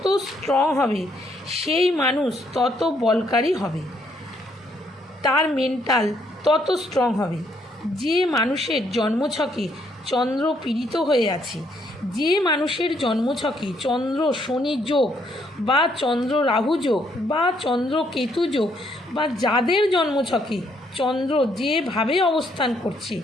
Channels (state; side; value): normal; both; correlation 0.71